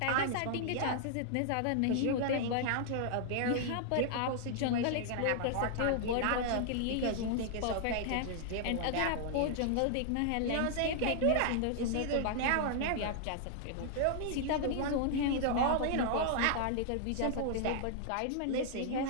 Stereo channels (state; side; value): different; both; correlation -0.01